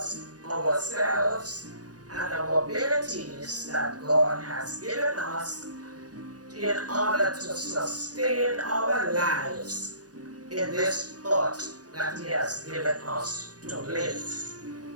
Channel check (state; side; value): late; left; 0.68 ms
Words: ourselves and our abilities that God has given us in order to sustain our lives in this earth that He has given us to live.